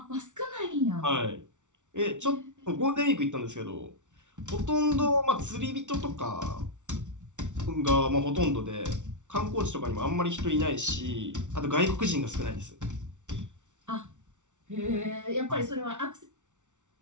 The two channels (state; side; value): late; left; 0.86 ms